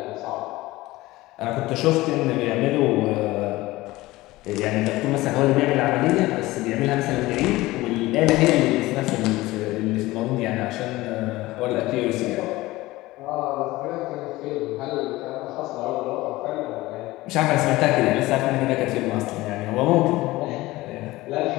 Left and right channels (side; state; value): right; quieter; 18.8 dB